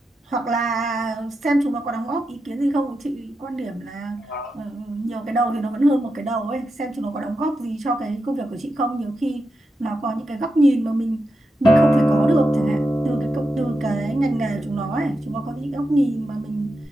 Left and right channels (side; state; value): both; normal; correlation 0.88